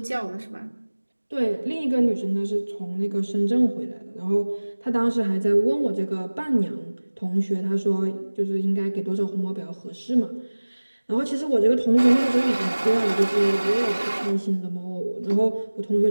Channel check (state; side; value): inverted; both; correlation -1.00